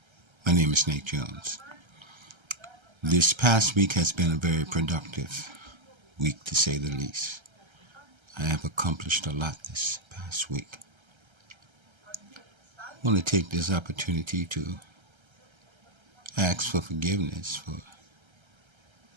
My name is Nate Jones. This past week has been a very productive week, to say the least. I have accomplished a lot this past week. I want to take this opportunity to ask for forgiveness for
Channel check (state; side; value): late; left; 1.3 ms